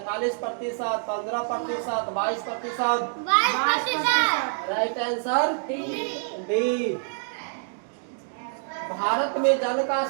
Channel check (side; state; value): left; silent; digital silence